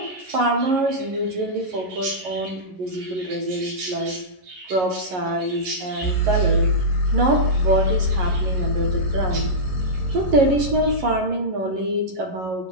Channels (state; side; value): late; left; 11 ms